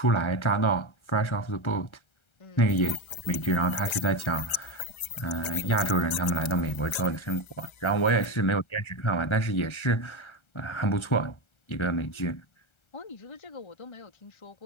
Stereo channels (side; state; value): right; late; 1.3 ms